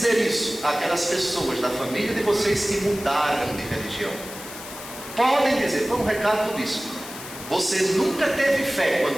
isso aquelas pessoas da família de vocês que mudaram de religião. Podem dizer: foi um recado do bispo, você nunca teve fé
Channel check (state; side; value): noise; left; hiss, 13 dB below the sound